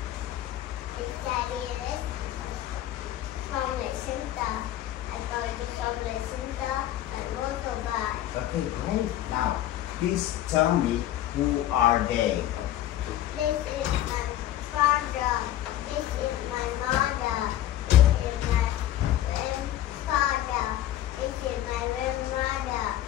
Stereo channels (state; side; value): quieter; right; 13.0 dB